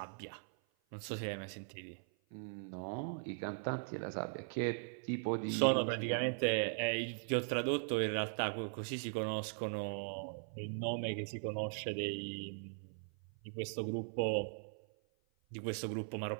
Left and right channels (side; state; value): left; silent; 51 dB below the other